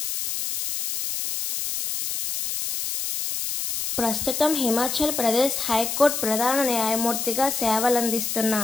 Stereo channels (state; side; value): noise; left; hiss, 3 dB below the sound